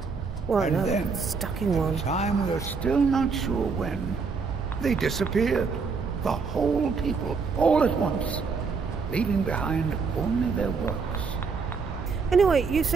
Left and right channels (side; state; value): left; quieter; 5.0 dB